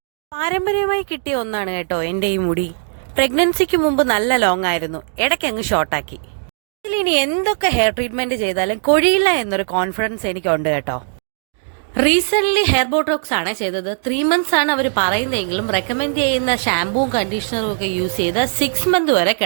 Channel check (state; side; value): silent; left; 67 dB below the other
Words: പാരമ്പര്യമായി കിട്ടിയ ഒന്നാണ് കേട്ടോ എൻ്റെ ഈ മുടി. പ്രഗ്നൻസിക്ക് മുമ്പ് നല്ല ലോങ് ആയിരുന്നു, ഇടയ്ക്ക് അങ്ങ് ഷോർട്ടാക്കി. ഇതിലിനി എന്തൊക്കെ ഹെയർ ട്രീറ്റ്മെന്റ് ചെയ്താലും കൊഴിയില്ല എന്നൊരു കോൺഫിഡൻസ് എനിക്കുണ്ട് കേട്ടോ. റീസെന്റ് ഹെയർ ബോട്ടോക്സ് ആണ് ചെയ്തത്. 3 months ആണ് അവർ പറയുന്നതെങ്കിലും റെക്കമെൻഡ് ചെയ്യുന്ന ഷാമ്പൂവും കണ്ടീഷണറും ഒക്കെ യൂസ് ചെയ്ത് 6 months വരെ